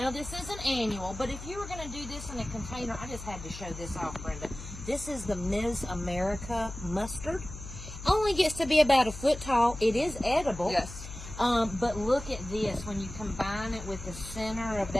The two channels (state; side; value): noise; left; hum, 12 dB below the sound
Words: this isn't annual, but if you were going to do this in a container, I just had to show this off, Brenda. This is the Ms. America mustard. Only gets to be about 1 foot tall. It is edible. Yes. But look at this when you combine it with the center of